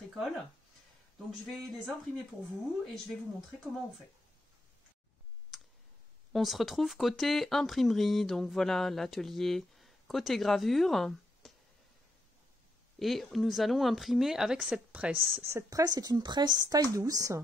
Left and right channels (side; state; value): both; normal; correlation 0.79